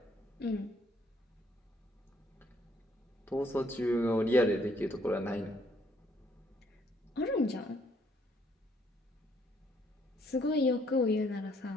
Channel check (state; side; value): normal; both; correlation 0.67